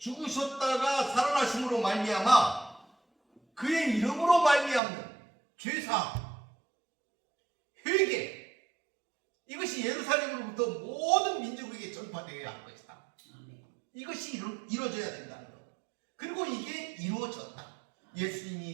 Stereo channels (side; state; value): left; drops out; at 4.8 s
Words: 살아나심으로 말미암아 그의 이름으로 말미암는 죄사함, 회개, 이것이 예루살렘으로부터 모든 민족에게 전파되어야 할 것이다. 아멘. 이것이 이루어져야 된다는 것. 그리고 이게 이루어졌다.